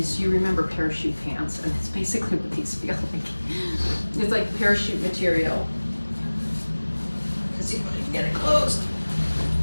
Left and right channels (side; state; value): both; inverted; correlation -1.00